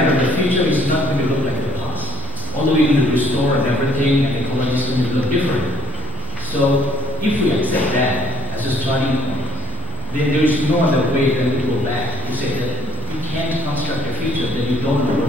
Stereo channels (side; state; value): both; normal; correlation 0.58